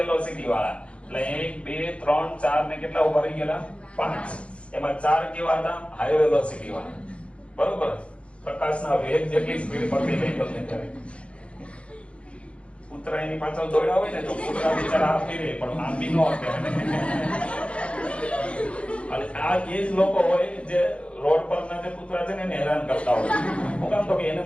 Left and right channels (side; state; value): right; late; 0.060 ms